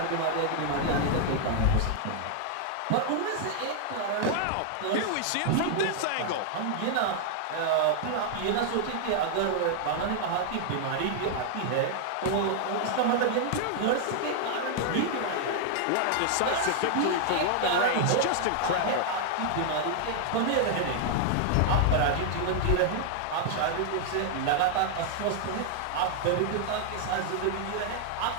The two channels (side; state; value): both; different; correlation 0.00